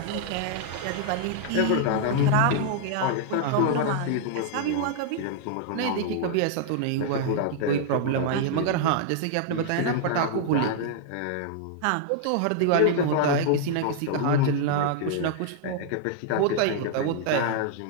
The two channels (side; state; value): both; different; correlation -0.01